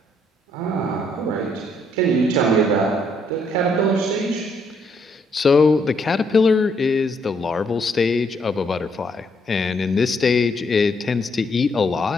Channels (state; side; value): normal; both; correlation 0.72